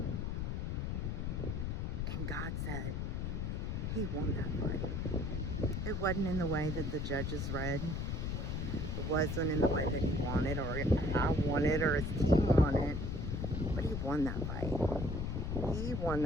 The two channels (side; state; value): left; noise; rumble, 1 dB below the sound